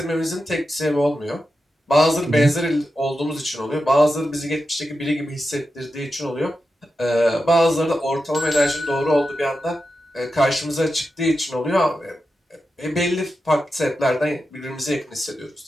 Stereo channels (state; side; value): normal; both; correlation 0.90